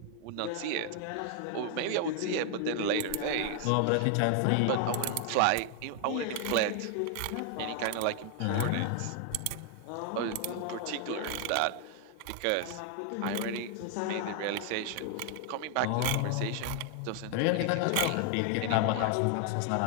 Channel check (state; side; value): different; both; correlation 0.00